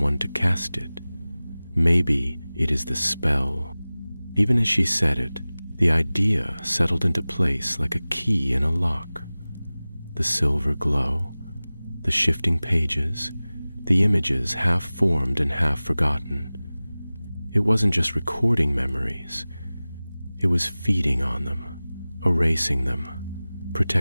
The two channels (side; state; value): both; inverted; correlation -0.98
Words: to cast it. Maybe it is the spell." Even as she said it, The idea settled into place like a key in a lock. The silver glow, the shifting pages, the images half formed and half forgotten. It wasn't just recording memories. It was feeding on them, erasing them,